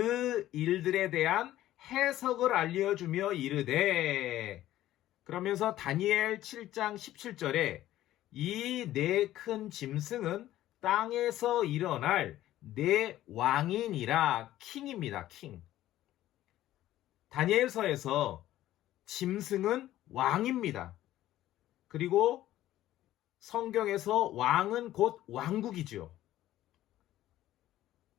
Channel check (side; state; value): right; quieter; 14.1 dB